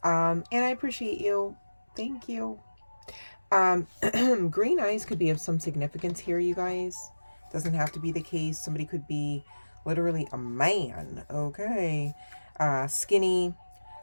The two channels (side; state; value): both; inverted; correlation -1.00